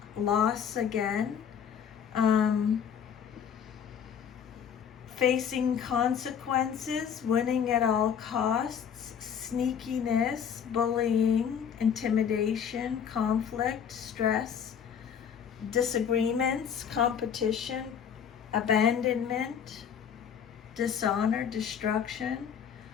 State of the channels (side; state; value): right; quieter; 7.9 dB